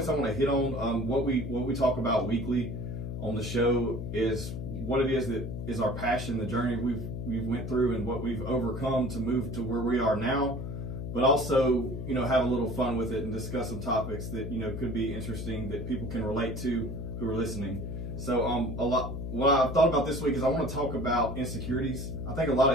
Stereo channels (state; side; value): noise; left; hum, 5 dB below the sound